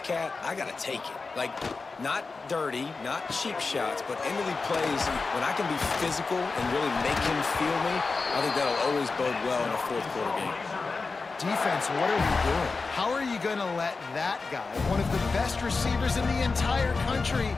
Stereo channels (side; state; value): right; quieter; 4.2 dB